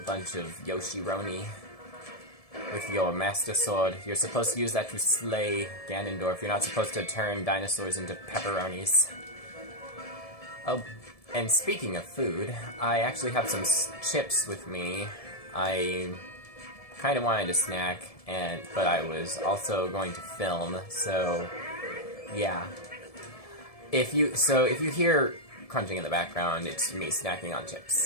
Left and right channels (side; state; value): right; late; 1.7 ms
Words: of Yoshi-roni with your Master Sword. You're supposed to use that to slay Ganondorf. You're not supposed to turn dinosaurs into pepperonis. Oh, and speaking of food, I actually have some chips with me. I kind of wanted a snack, but I was also going to film, so yeah. If you hear crunching in the background, it's me snacking on